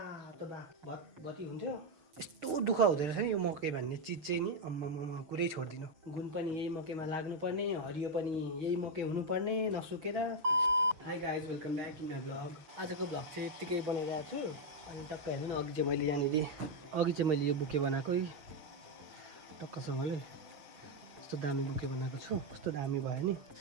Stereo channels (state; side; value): late; left; 6.6 ms